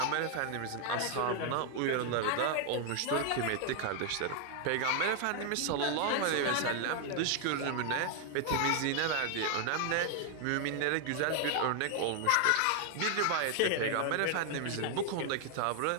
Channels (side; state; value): both; different; correlation 0.00